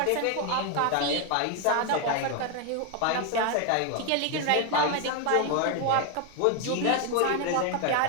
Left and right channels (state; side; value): different; both; correlation 0.01